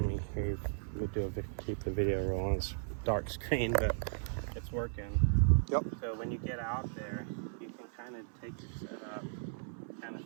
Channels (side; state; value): left; silent; 54 dB below the other